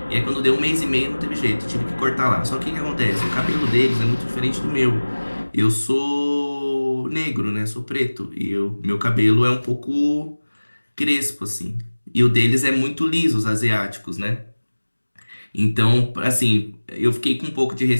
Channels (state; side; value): inverted; both; correlation -1.00